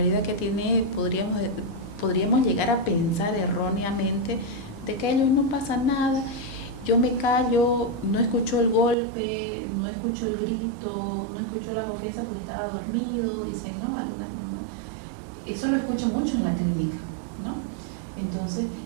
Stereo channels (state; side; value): drops out; left; at 9.0 s